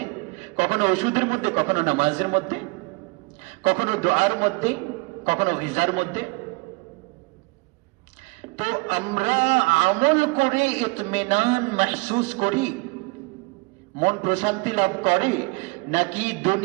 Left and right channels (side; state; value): left; quieter; 27.7 dB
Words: কখনো ওষুধের মধ্যে, কখনো নামাজের মধ্যে, কখনো দোয়ার মধ্যে, কখনো গিজার মধ্যে। তো আমরা আমল করে ইতমিনান মাহসুস করি, মন প্রশান্তি লাভ করে, নাকি